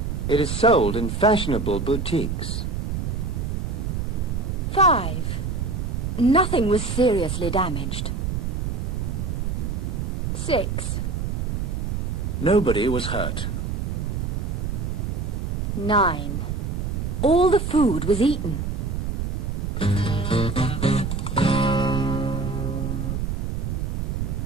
It is sold in fashionable boutiques. 5. Nothing was seriously damaged. 6. Nobody was hurt. 9. All the food was eaten.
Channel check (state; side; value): noise; right; rumble, 2 dB below the sound